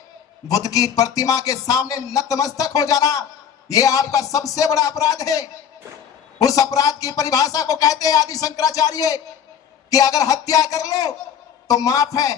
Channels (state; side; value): quieter; right; 8.3 dB